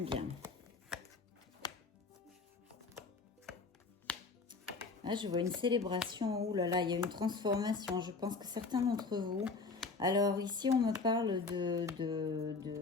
Là, je vois une célébration. Ouh là là, il y a une transformation. Je pense que certains d'entre vous... Alors, ici, on me parle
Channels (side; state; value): right; quieter; 4.2 dB